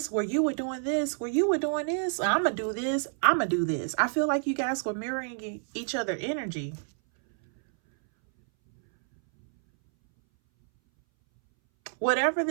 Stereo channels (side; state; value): left; silent; 59 dB below the other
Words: where you were doing this, where you were doing this. I'm gonna do this. I'm gonna do this. I feel like you guys were mirroring each other energy. Whatever